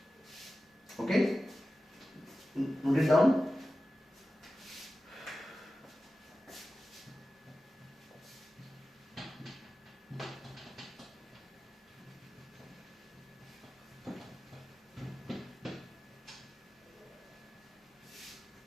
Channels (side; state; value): both; normal; correlation 0.94